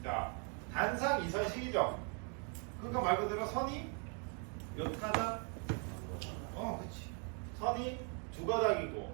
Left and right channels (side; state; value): left; quieter; 39.4 dB